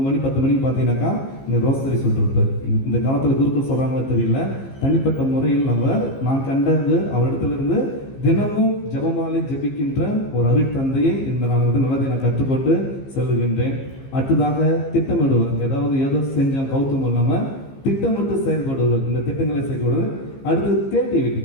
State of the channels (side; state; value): right; late; 15 ms